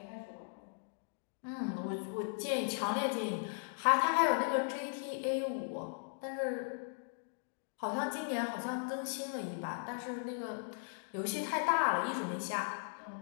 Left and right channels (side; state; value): right; silent; digital silence